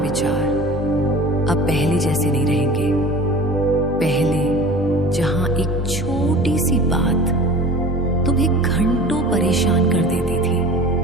अब पहले जैसे नहीं रहेंगे। पहले जहां एक छोटी सी बात तुम्हें घंटों परेशान कर देती थी,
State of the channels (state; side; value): normal; both; correlation 0.40